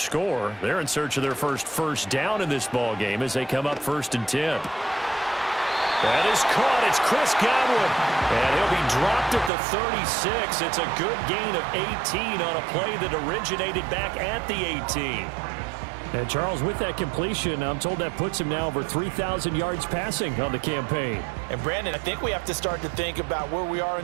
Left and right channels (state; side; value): drops out; left; at 9.5 s